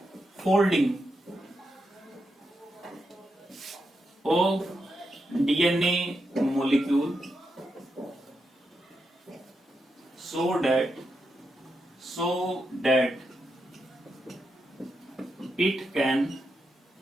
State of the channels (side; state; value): both; normal; correlation 0.85